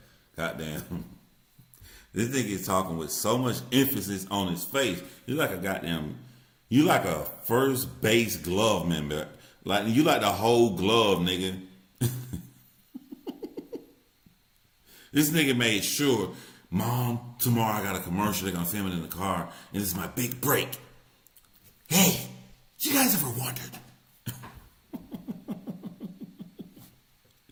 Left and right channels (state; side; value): identical; both; correlation 1.00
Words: Goddamn. This nigga is talking with so much emphasis on his face. You like a first base glove member. Like you like the whole glove, nigga. This nigga made sure, Mom, tomorrow I got a commercial. They're gonna film it in the car, and this is my big break. Hey, you guys ever wondered?